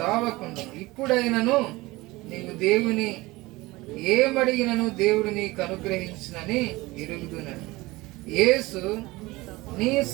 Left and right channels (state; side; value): quieter; left; 20.8 dB